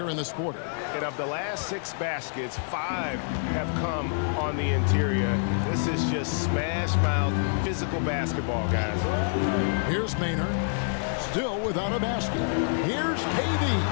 in this quarter. And of the last 6 baskets, 5 have come on the interior. This is just smash-mouth physical basketball, guys. Here's Maynard, still without a basket. Here's KD.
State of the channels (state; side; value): silent; right; digital silence